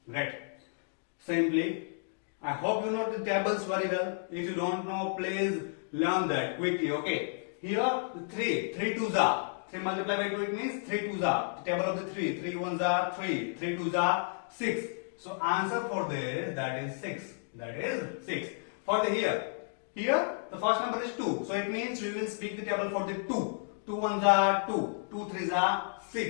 Great. Simply, I hope you know the tables very well. If you don't know, please learn that quickly. Okay. Here 3 2s are. 3 multiplied by 2, it means 3 2s are. The table of the 3. 3 1s are 3. 3 2s are 6. So answer for this, that is 6. That is 6. For the here the first number is 2. So it means we will speak the table for the 2. 2 1s are 2. 2 3s are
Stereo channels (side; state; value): right; silent; digital silence